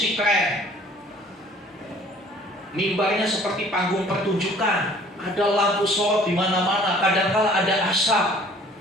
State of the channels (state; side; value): normal; both; correlation 0.53